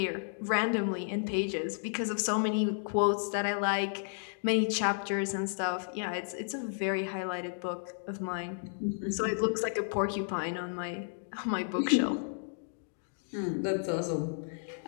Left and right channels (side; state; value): right; silent; digital silence